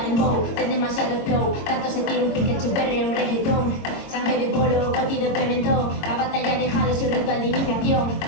en bow, ten demasiado flow. Tanto se tira un pique chuperre un reggaetón. Sangre de polo, coti de pimentón. La batalla dejado su ritual de iniciación.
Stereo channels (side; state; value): right; late; 22 ms